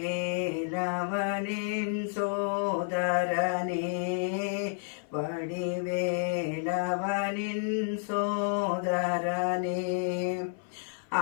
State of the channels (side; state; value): right; silent; 57 dB below the other